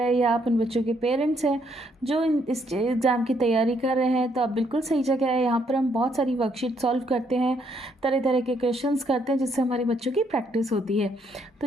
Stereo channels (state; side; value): normal; both; correlation 0.72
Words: हैं या आप उन बच्चों के पेरेंट्स हैं जो इस एग्ज़ाम की तैयारी कर रहे हैं तो आप बिल्कुल सही जगह है। यहाँ पर हम बहुत सारी वर्कशीट सॉल्व करते हैं, तरह तरह के क्वेश्चंस करते हैं जिससे हमारे बच्चों की प्रैक्टिस होती है। तो